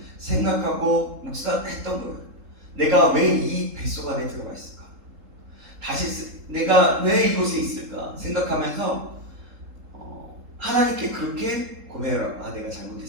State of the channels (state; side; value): late; left; 3.7 ms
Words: 생각하고 묵상했던 거예요. 내가 왜 이 뱃속 안에 들어가 있을까? 내가 왜 이곳에 있을까? 생각하면서 하나님께 그렇게 고백을 하고, 내가